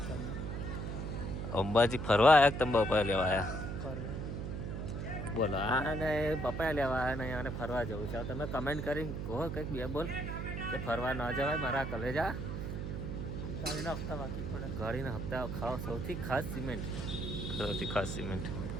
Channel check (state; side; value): noise; right; hum, 4 dB below the sound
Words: તમે. અંબાજી ફરવા આવ્યા તમે બપાયા લેવા આવ્યા? ફરવા બોલો, આને બપાયા લેવા આવ્યા ને આને ફરવા જવું છે. તમે કમેન્ટ કરીને કહો કંઈક બે બોલ કે ફરવા ન જવાય મારા કલેજા. ગાડીના હપ્તા બાકી પડે. ગાડીના હપ્તા ખાવ સૌથી ખાસ સિમેન્ટ. તો